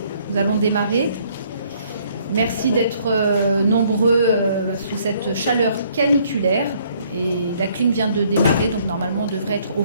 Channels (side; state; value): both; inverted; correlation -0.64